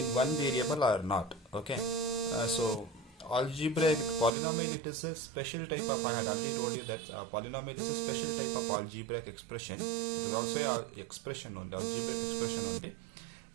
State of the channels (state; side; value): drops out; left; at 4.4 s